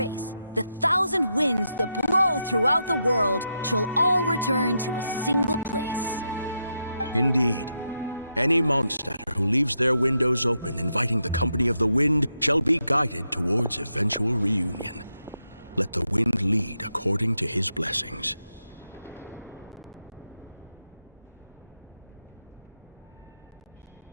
the 1,000 winds that blow throughout the world shall all return to a single place. Indeed. Any Mondstadter who leaves their windows open inviting the company of the wind shall be guided towards eventual reunion. Let the wind lead according to his blessings.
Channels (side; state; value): both; inverted; correlation -0.84